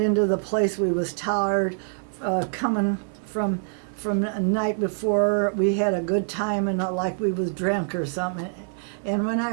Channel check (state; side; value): silent; left; 61 dB below the other